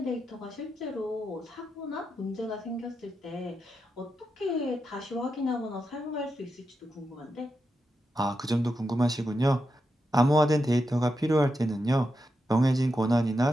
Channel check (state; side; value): normal; both; correlation 0.86